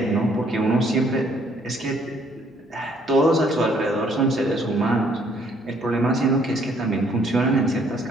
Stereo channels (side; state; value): both; normal; correlation 0.65